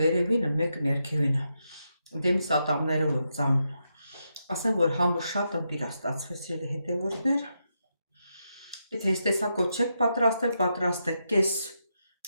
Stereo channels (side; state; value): both; inverted; correlation -0.83